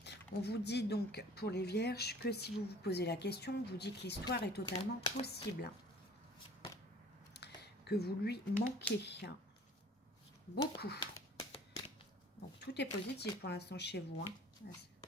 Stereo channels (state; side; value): normal; both; correlation 0.49